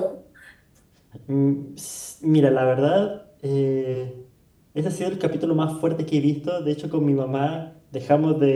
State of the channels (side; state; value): both; identical; correlation 1.00